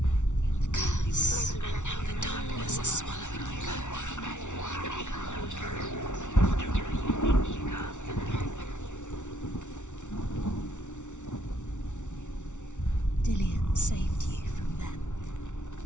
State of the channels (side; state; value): right; late; 0.85 ms